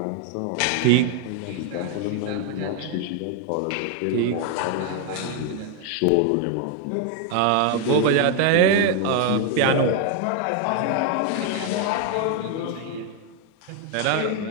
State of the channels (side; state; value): both; different; correlation 0.01